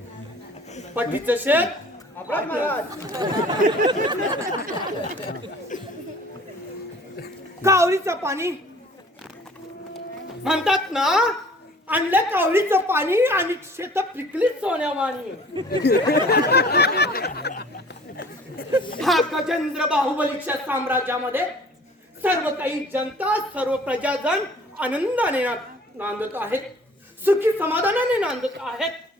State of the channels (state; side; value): normal; both; correlation 0.50